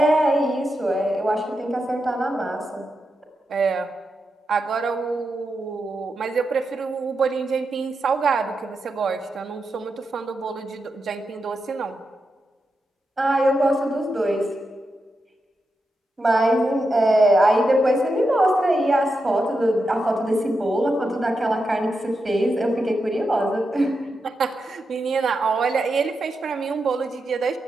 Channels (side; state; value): both; normal; correlation 0.87